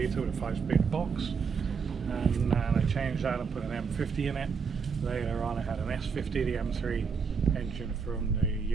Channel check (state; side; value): quieter; left; 5.7 dB